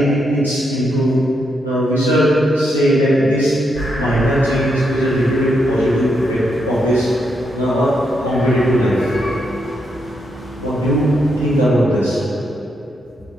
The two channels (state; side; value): normal; both; correlation 0.80